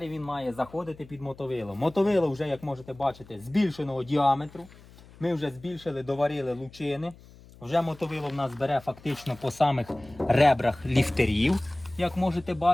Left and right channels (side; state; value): left; noise; hum, 22 dB below the sound